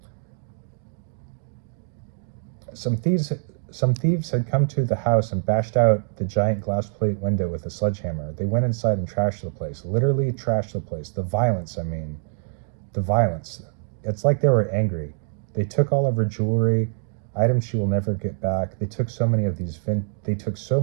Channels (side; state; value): left; silent; digital silence